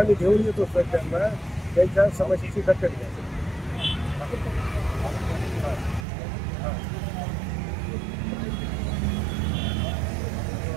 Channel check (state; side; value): drops out; left; at 6.1 s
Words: घेऊन येतो सर, त्यांना त्यांच्या समस्येची दखल घ्या.